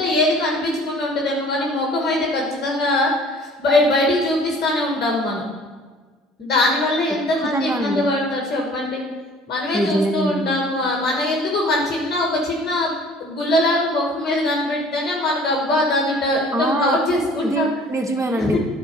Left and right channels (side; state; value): both; normal; correlation 0.51